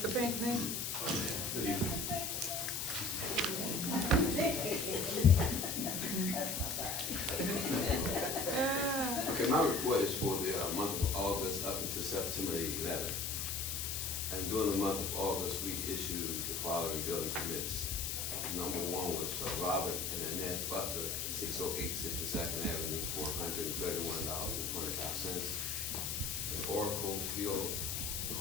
Pinckney? Good evening. Okay, my report is for the month of August up until September 11th. And during the month of August, we issued the following building permits. Number one was Robert and Annette Butler, 608 62nd Avenue, for $131.25. And Oracle Fuel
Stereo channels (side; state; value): left; noise; hiss, 2 dB below the sound